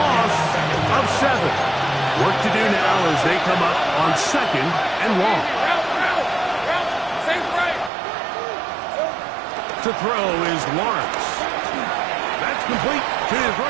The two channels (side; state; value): left; drops out; at 7.9 s